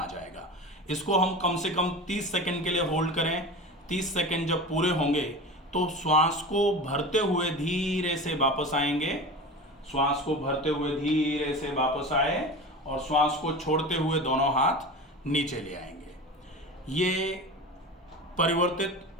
जाएगा। इसको हम कम से कम 30 सेकंड के लिए होल्ड करें। 30 सेकंड जब पूरे होंगे तो श्वास को भरते हुए धीरे से वापस आएंगे, श्वास को भरते हुए धीरे से वापस आए और श्वास को छोड़ते हुए दोनों हाथ नीचे ले आएंगे। ये परिवर्तित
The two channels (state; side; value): normal; both; correlation 0.30